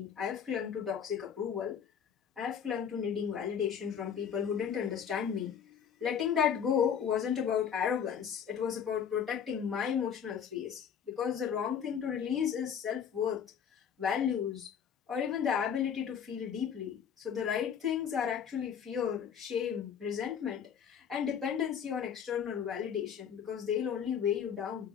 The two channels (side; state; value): right; quieter; 7.9 dB